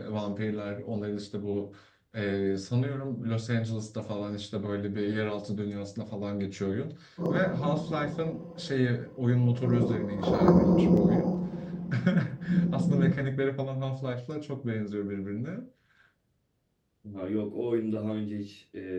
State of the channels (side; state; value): both; identical; correlation 1.00